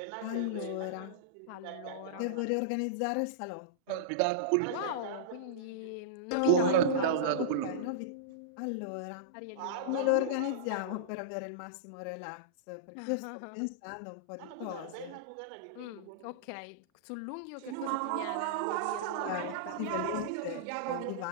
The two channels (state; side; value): different; both; correlation -0.04